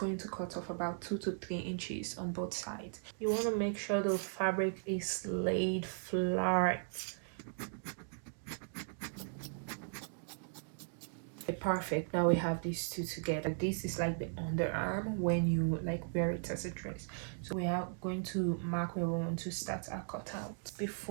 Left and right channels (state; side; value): silent; left; digital silence